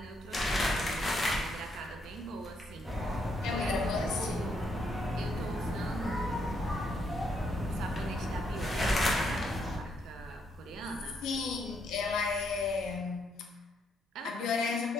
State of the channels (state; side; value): normal; both; correlation 0.75